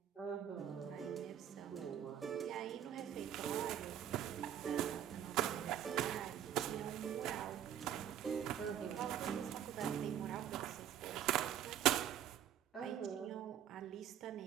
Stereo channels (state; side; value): quieter; left; 10.3 dB